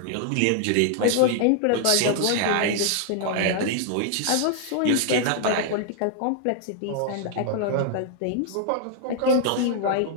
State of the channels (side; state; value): both; different; correlation -0.01